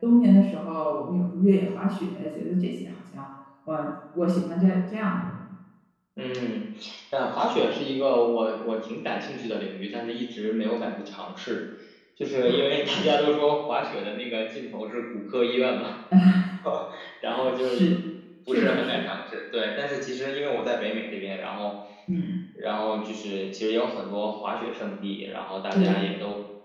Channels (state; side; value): identical; both; correlation 1.00